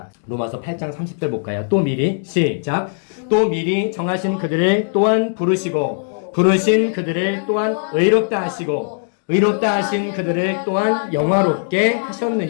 로마서 8장 30절 볼까요? 또 미리 시작. 또 미리 정하신 그들을 또한 부르신 그들을 또한 의롭다 하시고 의롭다 하신 그들을 또한 영화롭게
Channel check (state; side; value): silent; right; digital silence